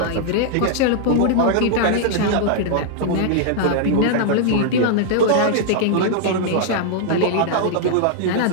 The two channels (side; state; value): both; different; correlation -0.01